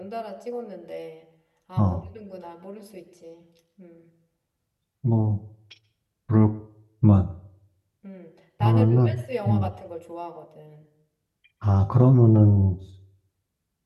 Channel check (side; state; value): both; identical; correlation 1.00